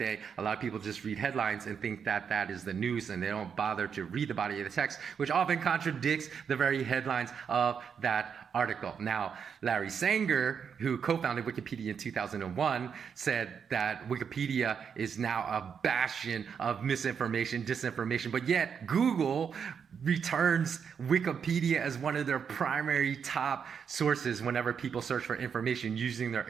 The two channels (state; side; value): quieter; left; 7.0 dB